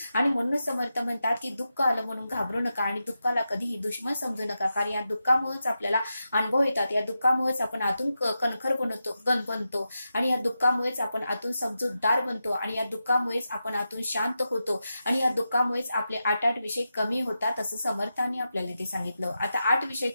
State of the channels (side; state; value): both; inverted; correlation -0.89